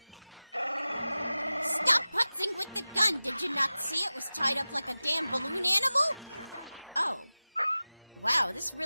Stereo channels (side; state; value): both; inverted; correlation -0.96